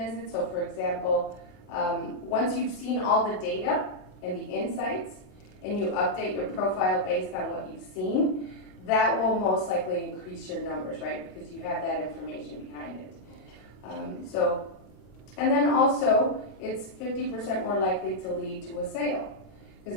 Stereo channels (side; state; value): right; late; 27 ms